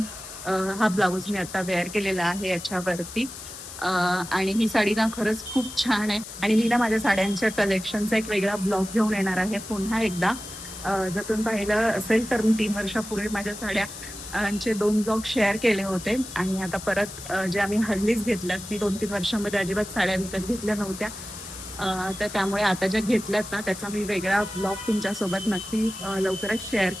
हा ब्लाऊज मी आता वेअर केलेला आहे याच्यावरती. आणि ही साडी ना खरंच खूप छान आहे आणि मी ना माझ्या साड्यांच्या कलेक्शनचा एक वेगळा ब्लॉग घेऊन येणार आहे पुन्हा एकदा. जर तुम्ही पाहिलं असेल तर मी 3 वर्षापूर्वी माझ्या साड्या चे 2 ब्लॉग शेअर केले होते आणि आता परत जे आम्ही हल्लीच घेतल्यात, मी 2-3 वर्षांमध्ये अजिबात साड्या विकत घेतल्या नव्हत्या. तर त्यामुळे आता ज्या घेतल्यात ना त्याचा मी वेगळा ब्लॉग तुमच्यासोबत नक्की लवकरच शेअर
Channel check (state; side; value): noise; left; hiss, 12 dB below the sound